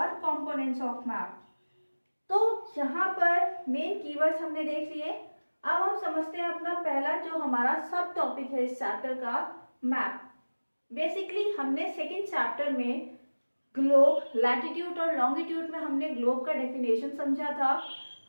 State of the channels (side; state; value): both; inverted; correlation -1.00